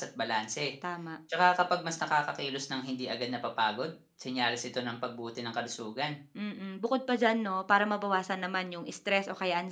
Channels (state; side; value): identical; both; correlation 1.00